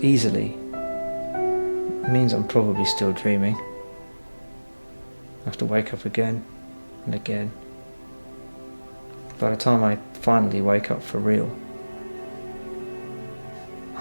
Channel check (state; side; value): inverted; both; correlation -1.00